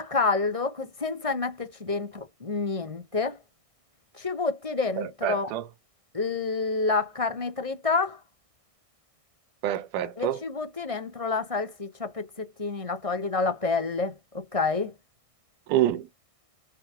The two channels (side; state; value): left; late; 1.6 ms